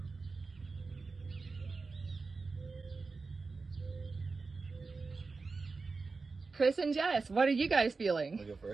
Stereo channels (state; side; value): quieter; left; 4.2 dB